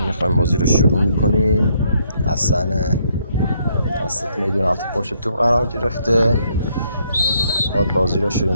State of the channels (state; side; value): inverted; both; correlation -0.71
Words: میخوایم بازی رو شروع میکنیم. حسن وسط میدون هفته پشت توپ قرار گرفته، خود بازی رو شروع